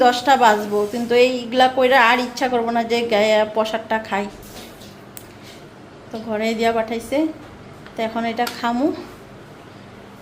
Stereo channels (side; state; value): both; identical; correlation 1.00